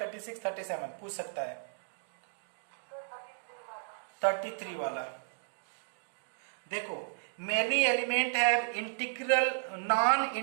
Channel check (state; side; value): silent; left; digital silence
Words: 37 पूछ सकता है। 33 वाला देखो, many element have integral non